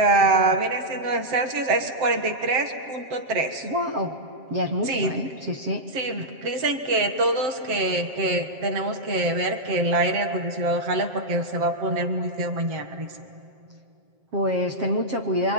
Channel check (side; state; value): left; late; 7.6 ms